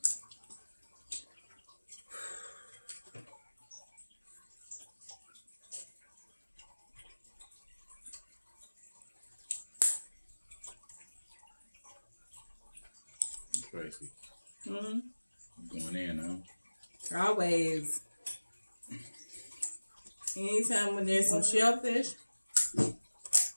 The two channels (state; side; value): inverted; both; correlation -1.00